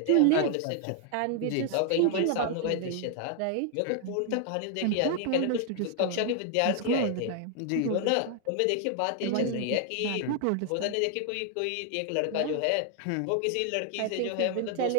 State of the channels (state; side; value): different; both; correlation 0.00